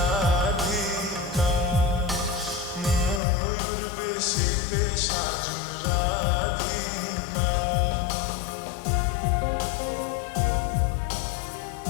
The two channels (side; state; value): right; drops out; at 3.2 s